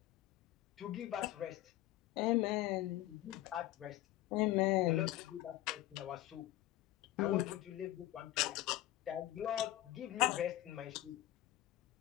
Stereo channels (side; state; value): right; quieter; 15.3 dB